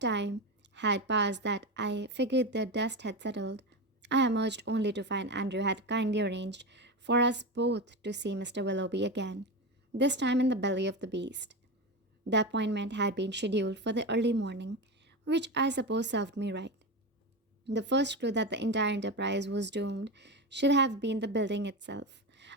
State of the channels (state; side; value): normal; both; correlation 0.19